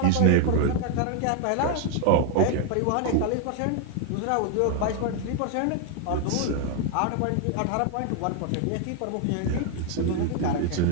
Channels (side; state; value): both; different; correlation 0.00